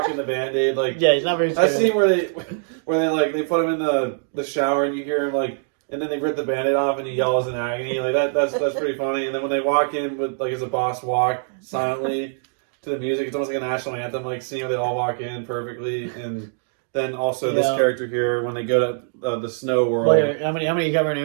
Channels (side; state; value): left; silent; digital silence